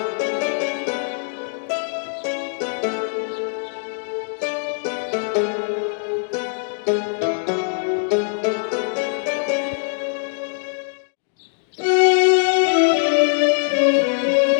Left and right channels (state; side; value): silent; right; digital silence